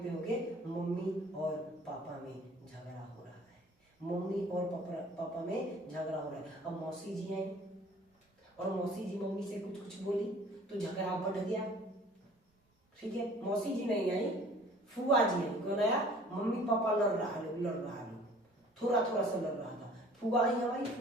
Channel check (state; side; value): normal; both; correlation 0.51